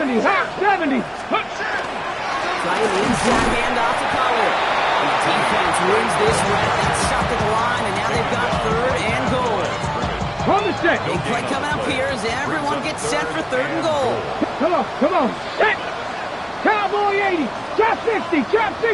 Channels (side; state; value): both; identical; correlation 1.00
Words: Hawk 70. Hawk. Trying the inside handoff to Pollard. And the defense wins this rep. That's stopped at the line, and now they've got third and goal. On the set. Big play coming up here as everyone gets set for third and goal. Come on. Come on. Set. Cowboy 80. Chop 60. Chop